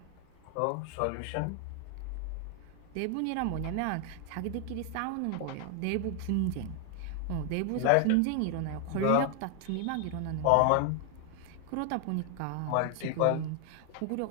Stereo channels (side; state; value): both; different; correlation 0.00